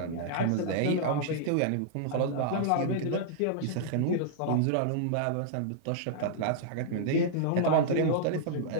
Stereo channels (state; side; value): different; both; correlation -0.02